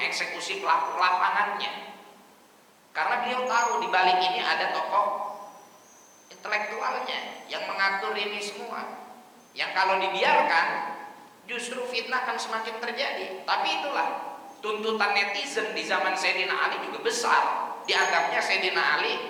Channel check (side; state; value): both; identical; correlation 1.00